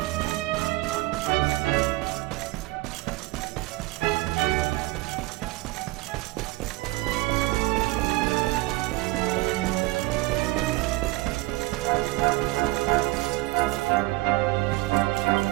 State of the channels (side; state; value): left; quieter; 20.5 dB